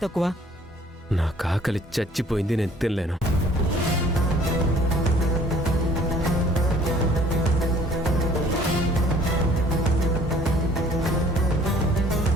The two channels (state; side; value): normal; both; correlation 0.56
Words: తక్కువ? నాకు ఆకలి చచ్చిపోయింది, నేను తినలేను.